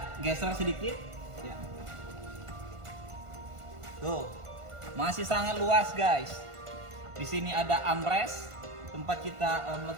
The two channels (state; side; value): late; left; 1.5 ms